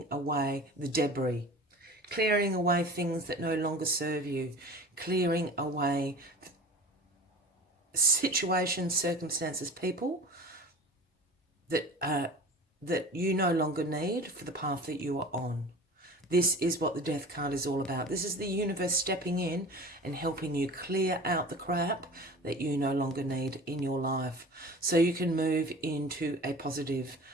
away the debris. Clearing away things that no longer serve you. Clearing away situations, circumstances, people that you no longer need for the path that you are on. This is what the Death card is all about. This is the universe stepping in and helping you clear out the crap that you no longer need in your life, so you can move into a positive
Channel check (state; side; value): normal; both; correlation 0.39